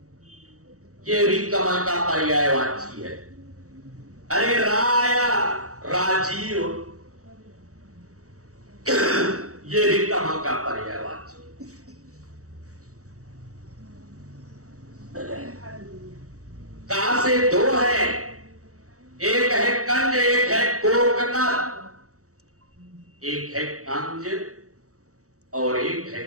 ये भी कमल का पर्यायवाची है। अरे राया राजीव, ये भी कमल का पर्यायवाची। का से दो है, एक है कंज, एक है कोकनद। एक है कंज और एक है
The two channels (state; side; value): late; left; 0.65 ms